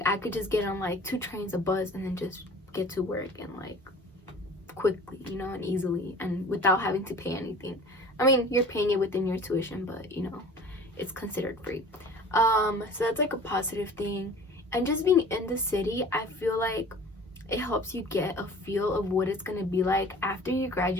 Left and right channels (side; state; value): both; normal; correlation 0.44